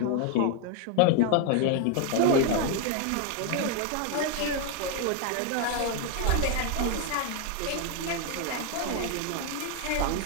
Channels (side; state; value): both; different; correlation 0.01